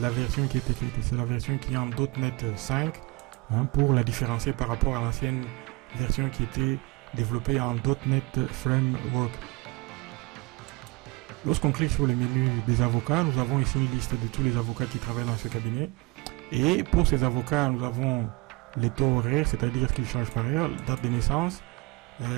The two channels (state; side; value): quieter; left; 25.1 dB